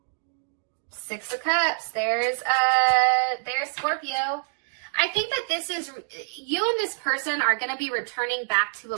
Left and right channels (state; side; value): silent; left; digital silence